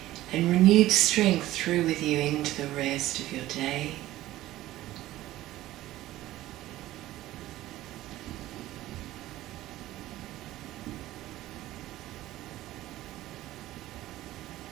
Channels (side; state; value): left; quieter; 15.5 dB